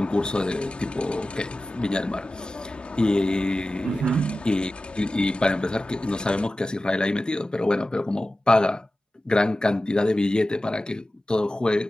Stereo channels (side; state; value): both; normal; correlation 0.95